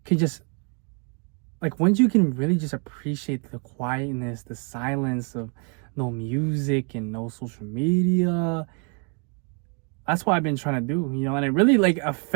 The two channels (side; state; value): left; quieter; 36.7 dB